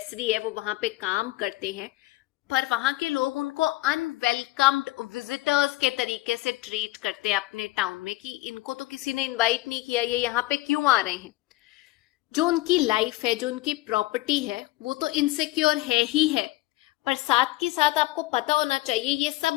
है, वो वहां पे काम करते हैं, पर वहां के लोग उनको अनवेलकम्ड विजिटर्स के तरीके से ट्रीट करते हैं अपने टाउन में, कि इनको तो किसी ने इनवाइट नहीं किया, ये यहाँ पे क्यों आ रहे हैं। जो उनकी लाइफ है, जो उनकी प्रॉपर्टी है, वो तो इनसिक्योर है ही है, पर साथ के साथ आपको पता होना चाहिए ये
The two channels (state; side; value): quieter; right; 19.1 dB